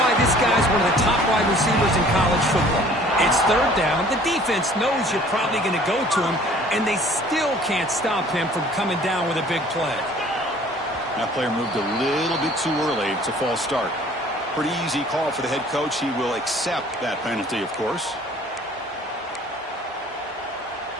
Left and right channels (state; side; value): normal; both; correlation 0.53